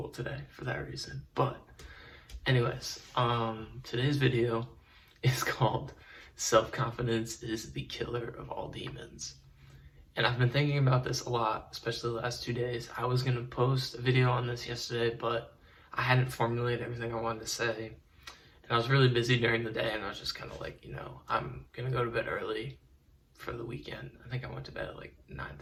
today for that reason. But anyways, today's video is called Self-Confidence is the Killer of All Demons. And I've been thinking about this a lot, especially the last 2 days. I was gonna post a video on this yesterday, but I hadn't formulated everything I wanted to say. And I was really busy during the day, and I was just kind of like, I'm gonna go to bed early for the weekend. I think I went to bed at like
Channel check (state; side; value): identical; both; correlation 1.00